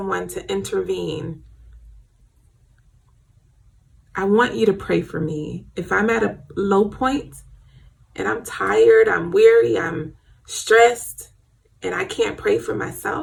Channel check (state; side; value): identical; both; correlation 1.00